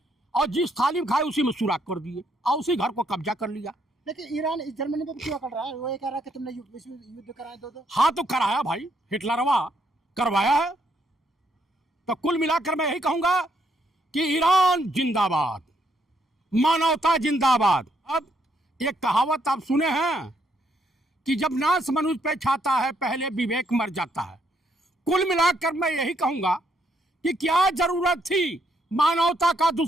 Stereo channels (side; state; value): both; normal; correlation 0.73